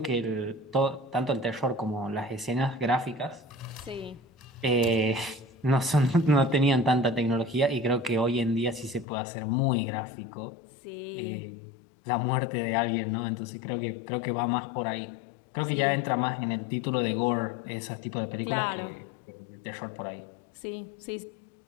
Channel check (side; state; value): right; drops out; at 9.1 s